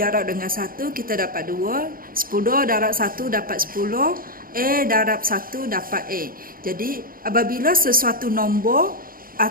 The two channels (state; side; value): late; left; 0.42 ms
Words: dengan 1, kita dapat 2. 10 darab 1 dapat 10. A darab 1 dapat A. Jadi, apabila sesuatu nombor